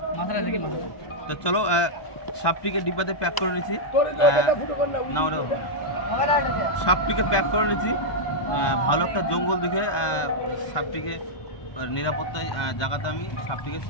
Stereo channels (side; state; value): right; late; 1.2 ms